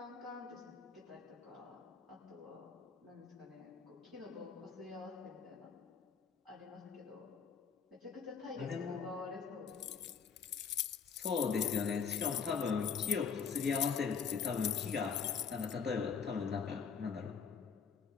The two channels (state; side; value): quieter; right; 6.2 dB